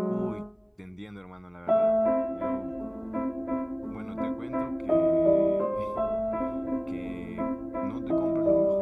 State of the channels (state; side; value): identical; both; correlation 1.00